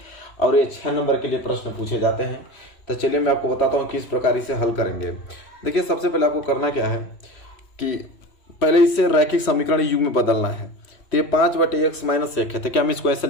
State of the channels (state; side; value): late; right; 3.1 ms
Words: और ये 6 नंबर के लिए प्रश्न पूछे जाते हैं। तो चलिए मैं आपको बताता हूँ किस प्रकार इसे हल करेंगे। देखिए सबसे पहले आपको करना क्या है कि पहले इसे रैखिक समीकरण युग्म में बदलना है। तो ये 5/x-1 है, तो क्या मैं इसको ऐसे